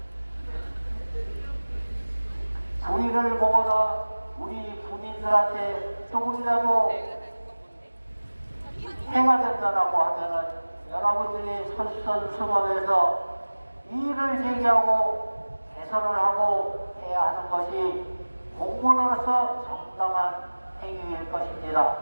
불의를 보거나 우리 국민들한테 조금이라도 해가 된다라고 하면은 여러분들이 솔선수범해서 이의를 제기하고 개선을 하고 해야 하는 것이 공무원으로서 정당한 행위일 것입니다.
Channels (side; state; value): both; inverted; correlation -1.00